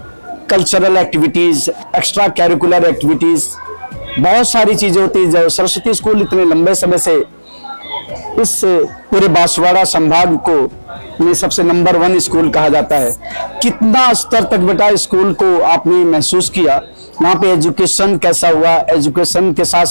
cultural activities, extra curricular activities? बहुत सारी चीजें होती है। जो Saraswati school इतने लंबे समय से इस पूरे बांसवाड़ा संभाग को में सबसे नंबर 1 स्कूल कहा जाता है। कितना स्तर तक बेटा स्कूल को आपने महसूस किया, वहाँ पे एजुकेशन कैसा हुआ, एजुकेशन के साथ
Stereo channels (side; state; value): both; inverted; correlation -1.00